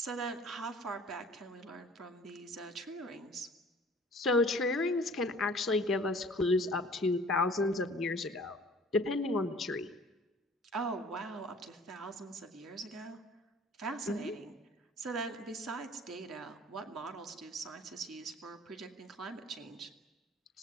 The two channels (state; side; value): normal; both; correlation 0.50